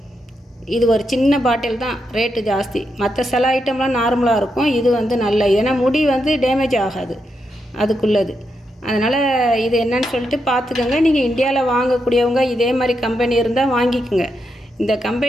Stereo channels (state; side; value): normal; both; correlation 0.83